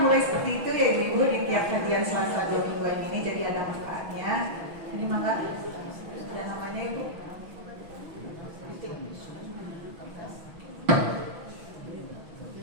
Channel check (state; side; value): late; left; 6.1 ms